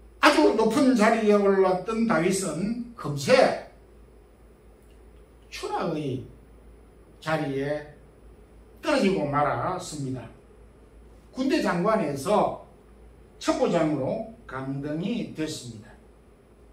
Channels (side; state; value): both; identical; correlation 1.00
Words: 아주 높은 자리에 올랐던 다윗은 금세 추락의 자리에 떨어지고 말았습니다. 군대 장관에서 첩보장으로 강등이 됐습니다.